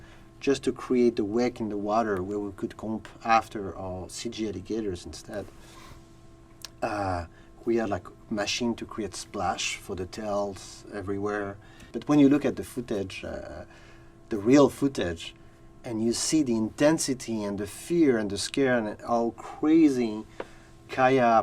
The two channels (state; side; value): identical; both; correlation 1.00